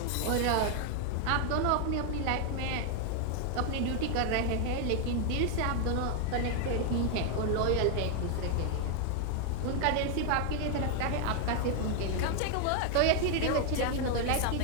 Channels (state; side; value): different; both; correlation 0.00